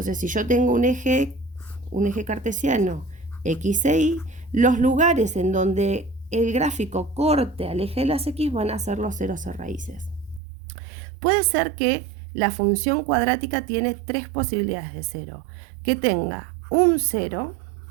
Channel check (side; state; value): left; drops out; at 10.4 s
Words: si yo tengo un eje cartesiano x e y, los lugares en donde el gráfico corte al eje de las x van a ser los ceros o raíces. Puede ser que la función cuadrática tiene tres posibilidades de cero: que tenga un cero,